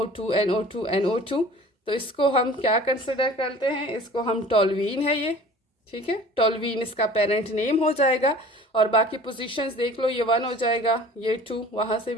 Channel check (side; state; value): both; normal; correlation 0.45